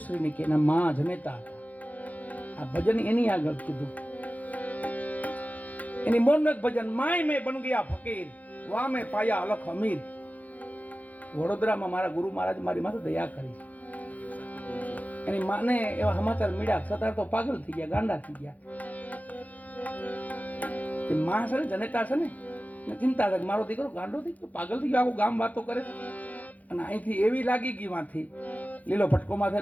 કે એના માં જનેતા હતા. આ ભજન એની આગળ કીધું. એની મોરનું એક ભજન, માય મેં બન ગયા ફકીર, વા મેં પાયા અલખ અમીર. વડોદરામાં મારા ગુરુ મહારાજ મારી માથે દયા કરી. એની માને એવા સમાચાર મળ્યા, છતાં તો પાગલ થઈ ગયા, ગાંડા થઈ ગયા. માં છે ને જનેતા છે ને, ચિંતા થાય મારો દીકરો ગાંડો થઈ ગયો, પાગલ થઈ ગયો, આખું ગામ વાતો કરે. અને અહીંથી એવી લાગી ગઈ માંથી લીલો ફટકો માથે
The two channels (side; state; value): right; late; 0.077 ms